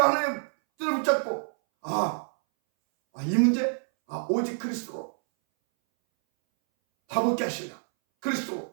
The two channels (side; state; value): left; silent; 60 dB below the other